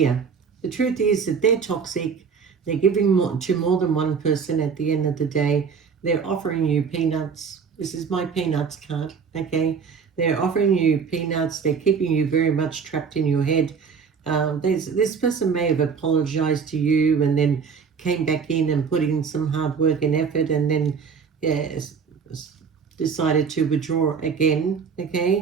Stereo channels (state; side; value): quieter; left; 6.1 dB